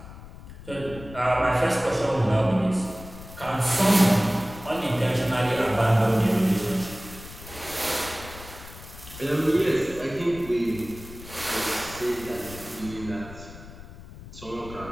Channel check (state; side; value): noise; left; rumble, 16 dB below the sound